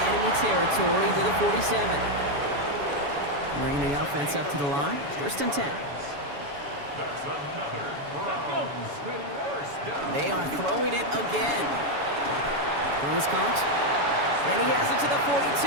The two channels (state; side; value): late; left; 7.1 ms